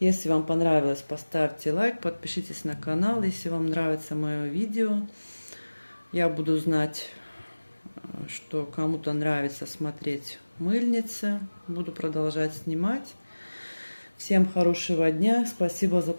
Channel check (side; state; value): both; inverted; correlation -1.00